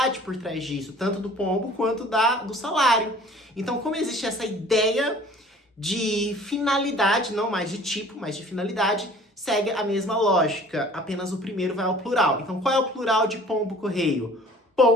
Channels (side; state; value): both; normal; correlation 0.50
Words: por trás disso, tanto do pombo quanto do salário. Então, como existe essa ideia de finalidade, não mais de tipo, mas de finalidade, segue a mesma lógica, apenas o primeiro vai ao plural. Então, qual é o plural de pombo correio?